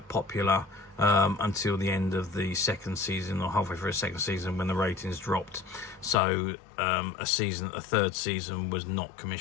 popular until the end of the second season, or halfway through the second season, when the ratings dropped. So a third season was not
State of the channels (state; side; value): drops out; right; at 6.2 s